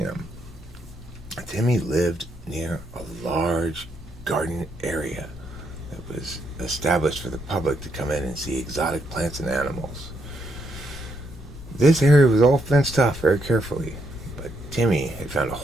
Timmy lived near a large garden area that was established for the public to come in and see exotic plants and animals. This area was all fenced off very carefully, but Timmy had found a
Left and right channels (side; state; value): both; normal; correlation 0.77